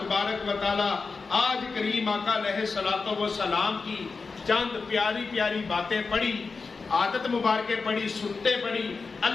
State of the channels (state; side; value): quieter; right; 4.5 dB